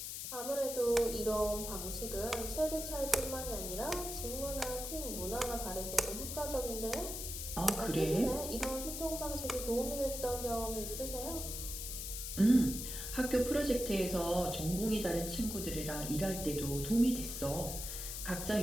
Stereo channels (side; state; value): left; noise; hiss, 5 dB below the sound